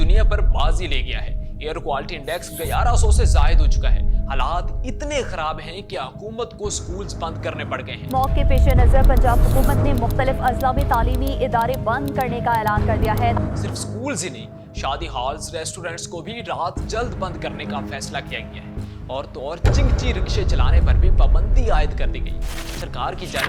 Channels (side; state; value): both; identical; correlation 1.00